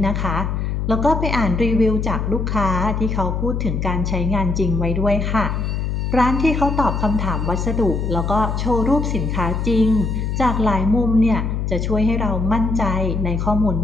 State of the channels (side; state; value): left; noise; hum, 1 dB below the sound